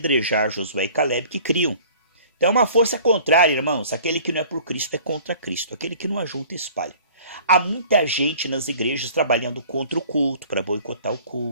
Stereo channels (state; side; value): inverted; both; correlation -0.49